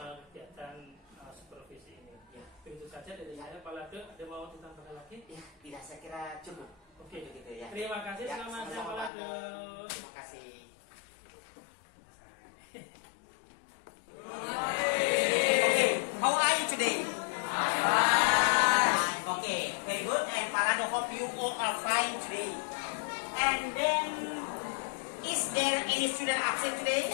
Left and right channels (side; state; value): right; drops out; at 9.1 s